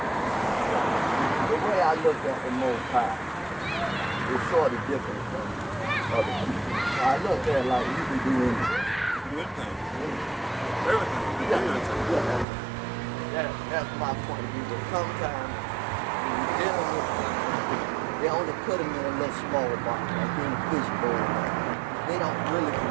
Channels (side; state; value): left; drops out; at 12.5 s